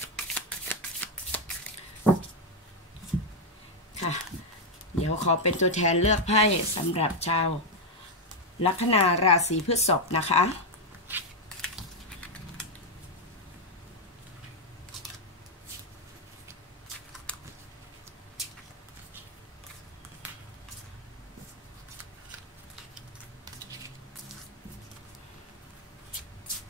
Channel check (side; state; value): both; normal; correlation 0.02